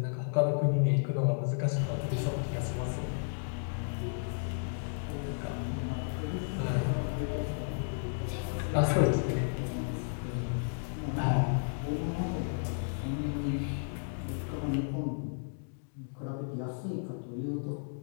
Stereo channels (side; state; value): right; silent; digital silence